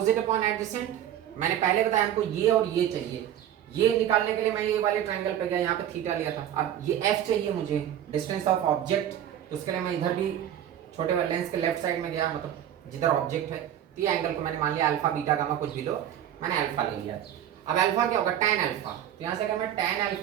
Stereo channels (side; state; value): left; quieter; 10.9 dB